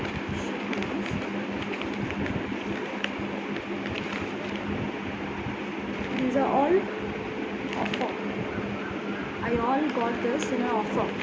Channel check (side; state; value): both; identical; correlation 1.00